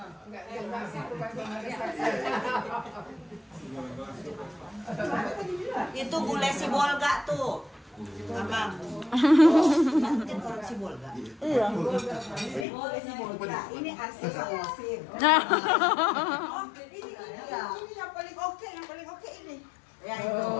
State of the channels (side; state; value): right; drops out; at 12.7 s